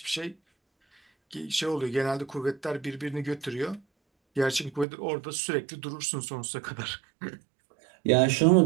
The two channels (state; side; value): drops out; left; at 4.9 s